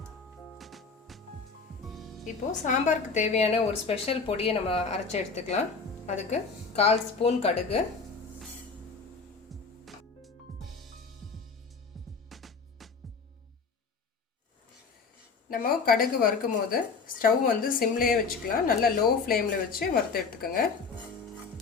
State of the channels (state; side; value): quieter; right; 4.8 dB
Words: இப்போது சாம்பாருக்கு தேவையான ஒரு ஸ்பெஷல் பொடியை நம்ம அரைச்சி எடுத்துக்கலாம். அதுக்கு 1/4 ஸ்பூன் கடுகு, நம்ம கடுகு வறுக்கும் போது ஸ்டவ் வந்து சிம்லேயே வச்சுக்கலாம். நல்லா லோ ஃப்ளேமில் வச்சு வறுத்து எடுத்துக்கோங்க.